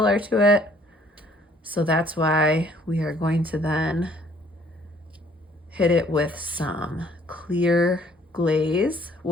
to it. So that's why we are going to then hit it with some clear glaze,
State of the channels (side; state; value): both; normal; correlation 0.61